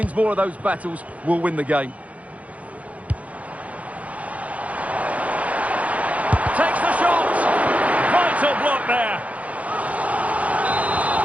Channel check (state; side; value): late; left; 0.067 ms